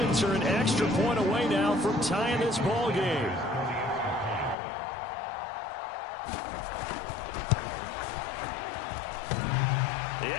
are an extra point away now from tying this ball game. The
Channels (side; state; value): right; drops out; at 4.5 s